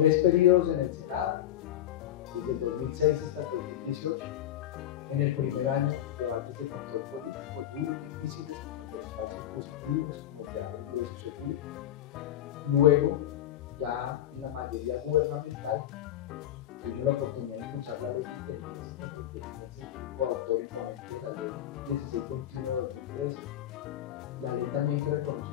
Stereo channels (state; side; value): quieter; right; 11.8 dB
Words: periodos en el Senado, desde el 2006 hasta el 2018. En el primer año, debates de control político duros, difíciles, como el de los falsos positivos, como el de agroingreso seguro. Luego, ya en la mayoría gubernamental, tuvimos la oportunidad de impulsar la Ley de Inteligencia y Contrainteligencia, coautor y ponente de la Ley 1621 de 2013. La ley también que